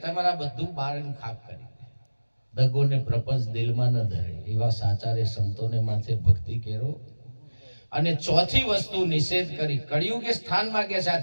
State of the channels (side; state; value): both; inverted; correlation -1.00